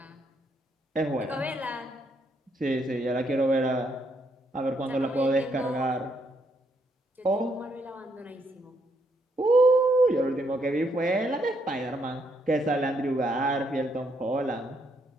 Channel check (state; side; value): normal; both; correlation 0.74